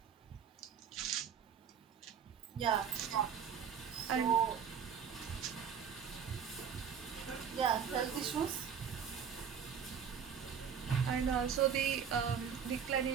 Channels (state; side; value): quieter; left; 7.4 dB